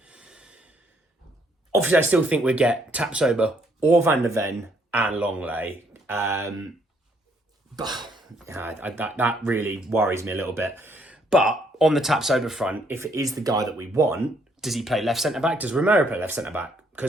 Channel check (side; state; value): both; normal; correlation 0.69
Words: Obviously, I still think we'd get Tapsoba or Van der Ven and Longley. But that really worries me a little bit. But on the Tapsoba front, if it is the guy that we want, does he play left centre-back? Does Romero play left centre-back?